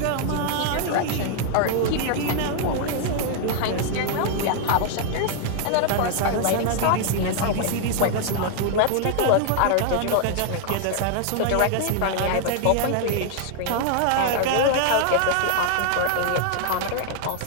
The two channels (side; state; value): both; different; correlation 0.00